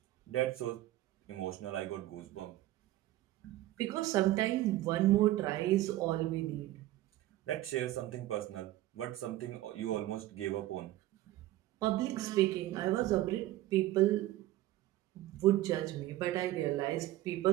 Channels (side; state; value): left; quieter; 15.5 dB